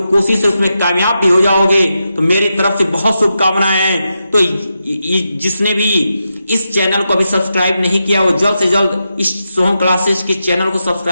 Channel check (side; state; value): both; inverted; correlation -0.87